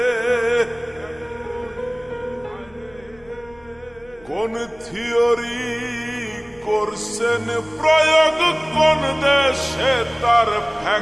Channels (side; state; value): left; noise; rumble, 27 dB below the sound